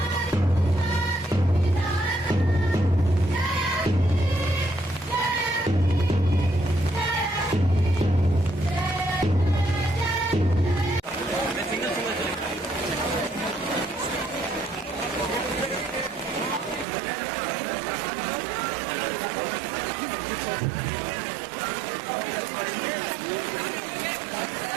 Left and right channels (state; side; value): drops out; left; at 16.9 s